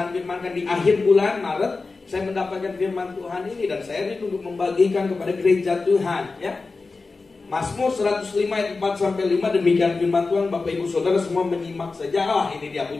firmankan di akhir bulan Maret, saya mendapatkan firman Tuhan ini dan saya rindu untuk membagikan kepada gereja Tuhan, ya. Mazmur 105 ayat 4 sampai 5, demikian firman Tuhan. Bapak Ibu Saudara semua menyimak saja. Ini dia,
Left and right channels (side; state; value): right; quieter; 3.9 dB